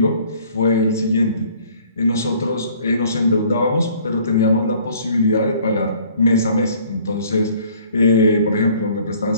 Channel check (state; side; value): inverted; both; correlation -0.56